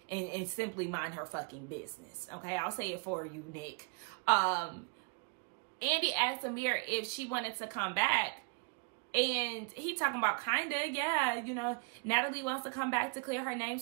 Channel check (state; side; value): quieter; left; 33.5 dB